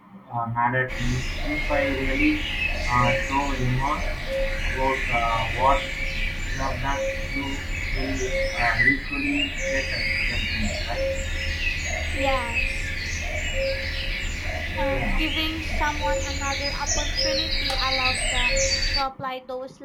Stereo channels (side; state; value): both; identical; correlation 1.00